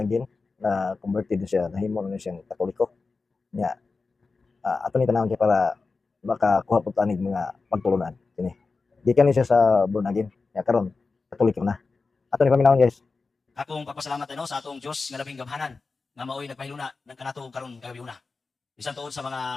na converted na siya, nahimo na siyang Katoliko. Nya, ato ni tanan kay para makakuha pud tanig mga pagtulunan kini. Gikan ni siya sa born again. Nya karon Katoliko na. Ato ni paminawon guys. Akong pagpasalamat sa atong Dios nga labing gamhanan nga maoy nagpahiluna ng kanato karon gayuna. Bisan tuod sa mga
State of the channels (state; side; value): quieter; right; 4.1 dB